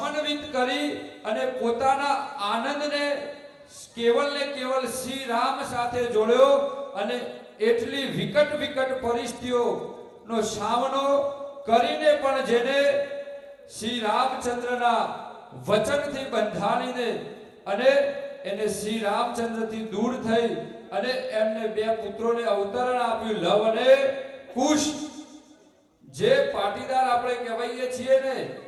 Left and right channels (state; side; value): identical; both; correlation 1.00